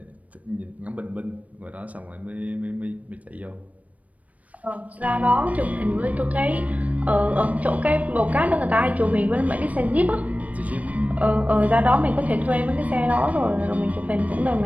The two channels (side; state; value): left; late; 0.069 ms